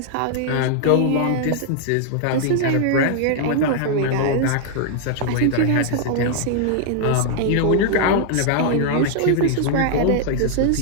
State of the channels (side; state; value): both; different; correlation -0.01